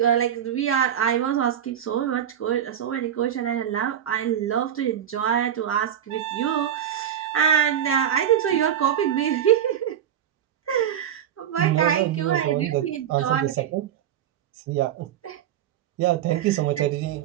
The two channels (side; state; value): left; quieter; 9.8 dB